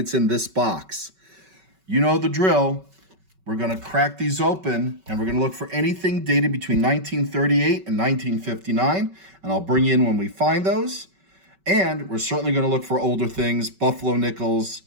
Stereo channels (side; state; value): left; late; 5.3 ms